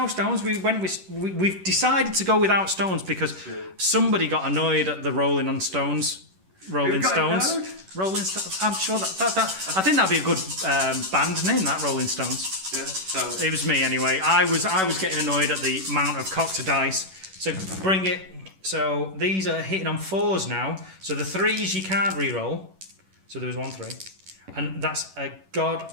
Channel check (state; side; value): late; left; 11 ms